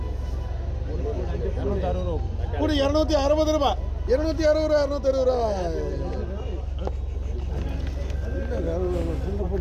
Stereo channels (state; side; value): identical; both; correlation 1.00